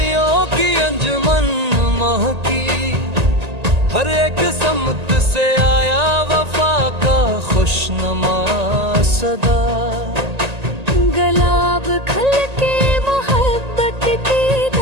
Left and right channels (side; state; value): left; late; 1.8 ms